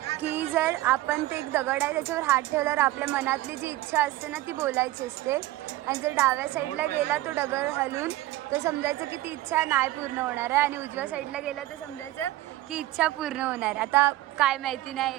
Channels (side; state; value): left; quieter; 16.4 dB